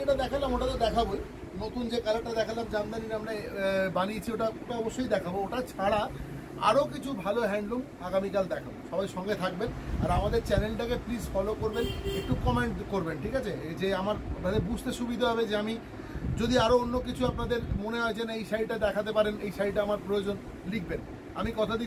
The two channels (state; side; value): identical; both; correlation 1.00